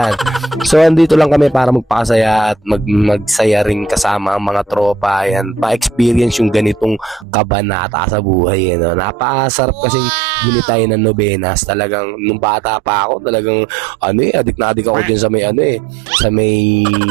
So andito lang kami para magpakasaya at magsaya rin kasama ang mga tropa. Ayan, pa-experience yung ganitong kabanata sa buhay no? Napakasarap kasi gunitay ng Novenas. Talagang nung bata pa ako, talagang adik na adik ako dyan sa may sa may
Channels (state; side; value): drops out; left; at 7.2 s